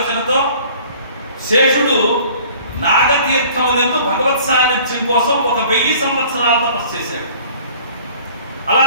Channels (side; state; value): both; inverted; correlation -0.50